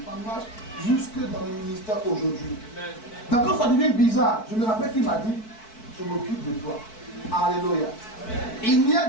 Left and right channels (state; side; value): late; right; 4.6 ms